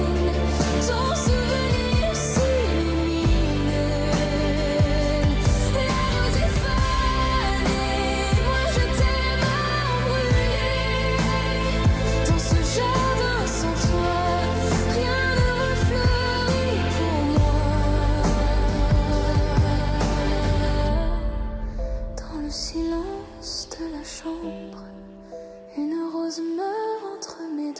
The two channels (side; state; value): both; identical; correlation 1.00